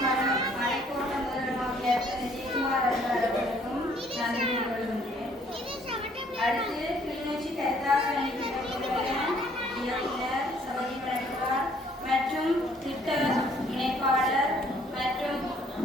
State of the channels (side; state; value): both; normal; correlation 0.62